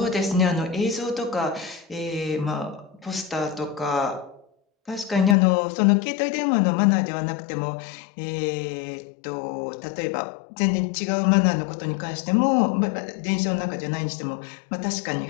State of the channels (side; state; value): right; drops out; at 5.4 s